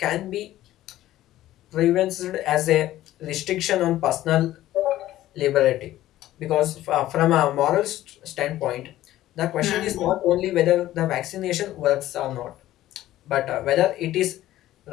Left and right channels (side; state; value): right; quieter; 14.4 dB